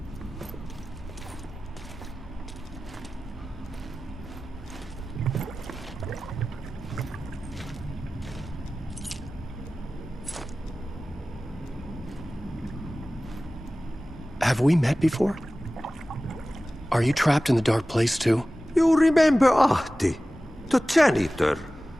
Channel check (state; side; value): normal; both; correlation 0.96